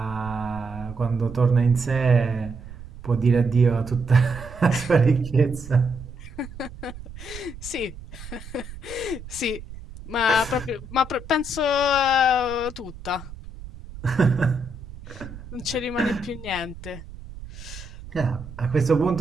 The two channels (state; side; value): noise; right; rumble, 14 dB below the sound